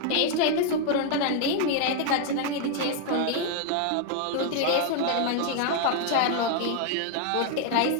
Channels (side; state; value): both; different; correlation 0.00